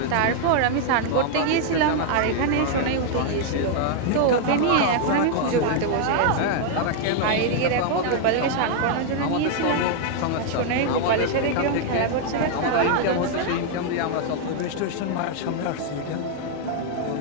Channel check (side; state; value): both; different; correlation 0.00